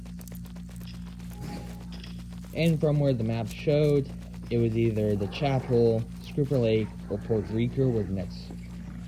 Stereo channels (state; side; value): identical; both; correlation 1.00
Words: and from where the map showed, it was either the chapel, Scooper Lake, or Port Rico were the next